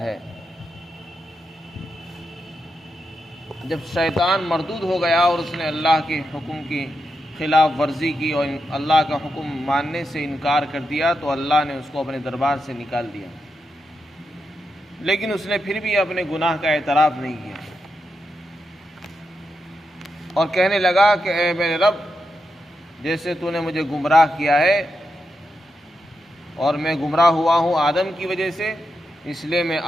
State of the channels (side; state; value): both; normal; correlation 0.86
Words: جب شیطان مردود ہو گیا اور اس نے اللہ کے حکم کی خلاف ورزی کی اور اللہ کا حکم ماننے سے انکار کر دیا تو اللہ نے اس کو اپنے دربار سے نکال دیا، لیکن اس نے پھر بھی اپنے گناہ کا اعتراف نہیں کیا اور کہنے لگا کہ اے میرے رب، جیسے تو نے مجھے گمراہ کیا ہے اور میں گمراہ ہوا ہوں آدم کی وجہ سے، اس لیے میں